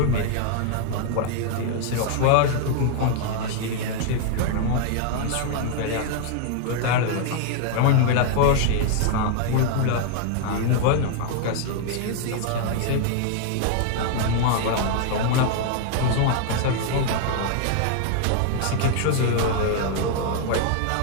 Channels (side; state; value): both; different; correlation 0.00